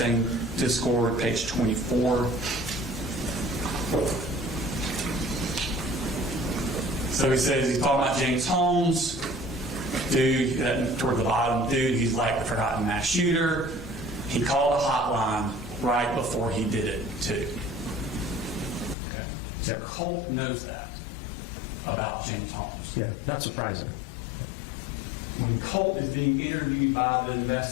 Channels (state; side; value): drops out; right; at 18.9 s